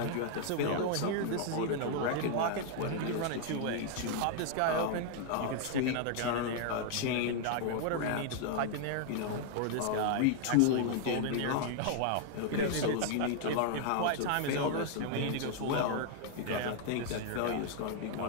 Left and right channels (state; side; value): different; both; correlation 0.00